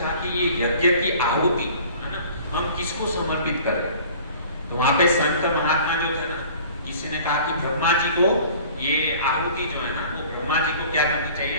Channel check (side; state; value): both; inverted; correlation -0.48